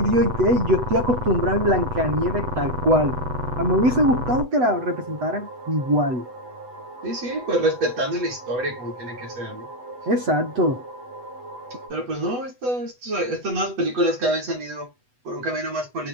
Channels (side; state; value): left; late; 8.0 ms